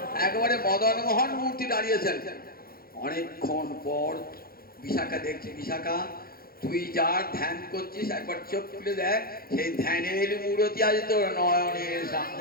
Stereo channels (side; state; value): right; late; 0.43 ms